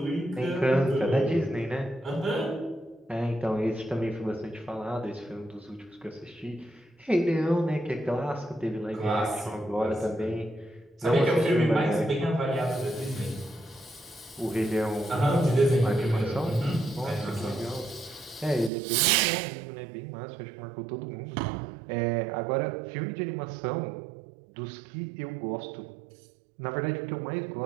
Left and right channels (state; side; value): drops out; left; at 18.7 s